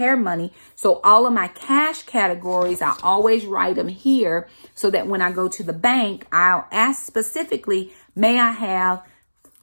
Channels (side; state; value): both; inverted; correlation -1.00